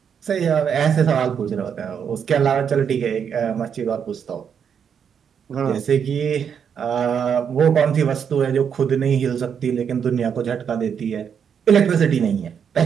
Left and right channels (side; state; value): left; quieter; 7.5 dB